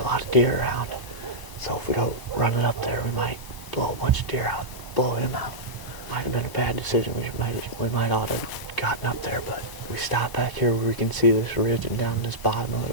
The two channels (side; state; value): left; late; 1.0 ms